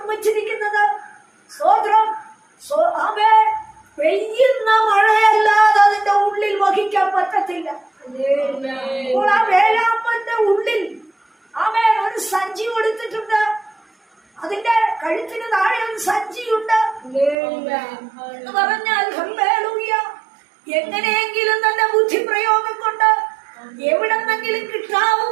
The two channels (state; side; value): drops out; left; at 17.4 s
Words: സ്തോത്രം ആമേ പെയ്യുന്ന മഴയല്ലാതെ അതിന്റെ ഉള്ളിൽ വഹിക്കാൻ പറ്റത്തില്ല. അപ്പോൾ ആ വേഴാമ്പലിന്റെ ഉള്ളിൽ ആമേ ഒരു സഞ്ചി കൊടുത്തിട്ടുണ്ട്. അതിന്റെ കഴുത്തിന് താഴെ ഒരു സഞ്ചിയുണ്ട് എന്ന് പറഞ്ഞാൽ ഹല്ലേലൂയ, എങ്ങനെയെങ്കിലും തന്റെ ബുദ്ധിപ്രയോഗം കൊണ്ട് എവിടെന്നെങ്കിലും